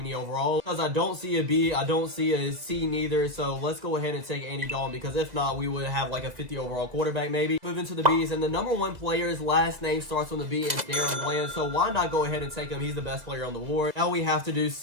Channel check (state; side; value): late; left; 2.0 ms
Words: overall because I don't see a B, I don't see a C neither. So let's go ahead and take Andy Dalton because if not, we would have like a 50 overall quarterback maybe. Moving to the B's, and the number one player's last name starts with a B and Darren Bland. So why not go ahead and take him? He's the best player on the board. Now we have to do